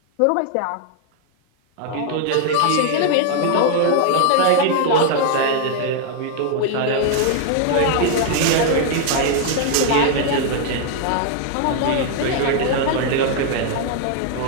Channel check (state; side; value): different; both; correlation 0.00